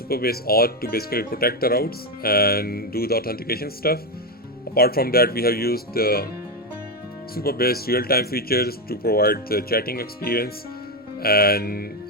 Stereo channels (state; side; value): normal; both; correlation 0.09